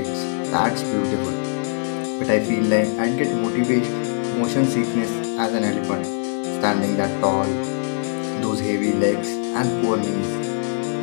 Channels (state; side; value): silent; right; digital silence